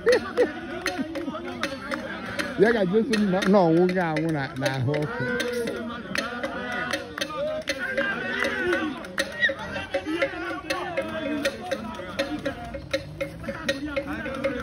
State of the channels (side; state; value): both; identical; correlation 1.00